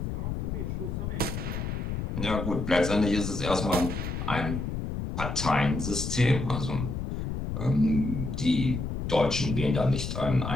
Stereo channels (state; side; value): noise; left; rumble, 3 dB below the sound